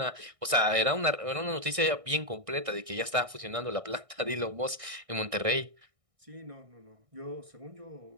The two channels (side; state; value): left; late; 1.6 ms